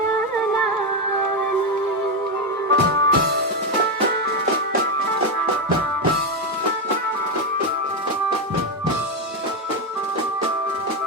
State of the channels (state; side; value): normal; both; correlation 0.08